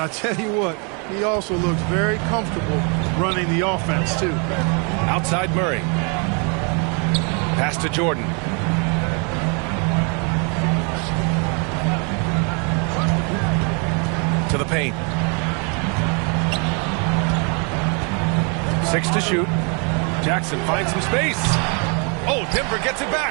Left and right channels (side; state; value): left; quieter; 35.5 dB